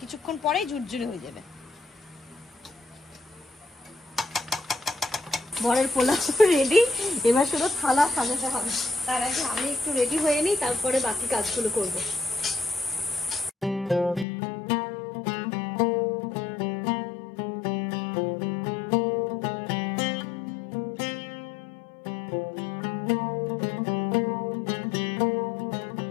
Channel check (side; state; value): right; drops out; at 14.2 s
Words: কিছুক্ষণ পরেই ঝুরঝুরে হয়ে যাবে। বরের পোলাও রেডি, এবার শুধু থালা সাজাতে হবে, তার আগে আমি একটু রেডি হয়ে নিই, তারপরে বাকি কাজগুলো করবো।